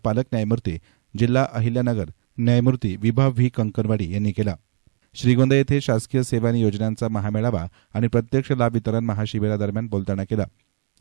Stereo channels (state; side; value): silent; left; digital silence